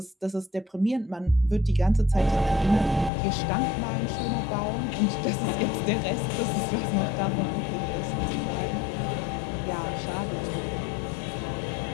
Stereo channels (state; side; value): drops out; right; at 3.1 s